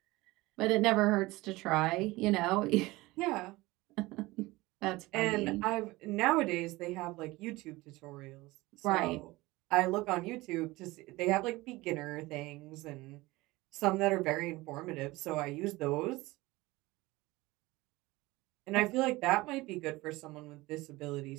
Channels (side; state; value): left; quieter; 20.5 dB